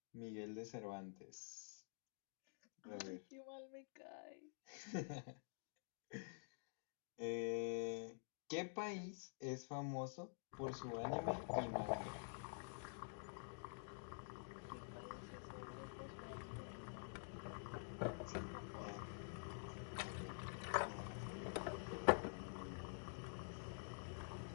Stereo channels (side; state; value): right; silent; digital silence